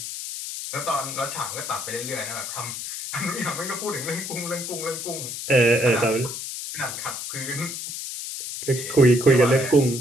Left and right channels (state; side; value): noise; left; hiss, 7 dB below the sound